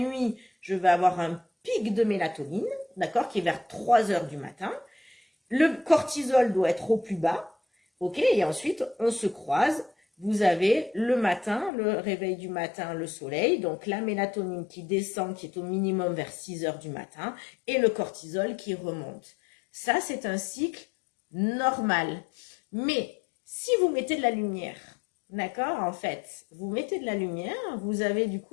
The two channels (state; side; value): drops out; right; at 11.7 s